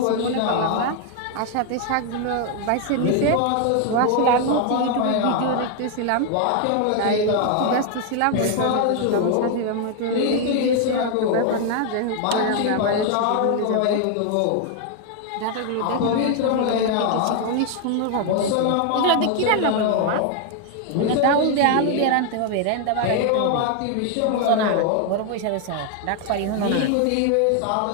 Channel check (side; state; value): both; different; correlation 0.00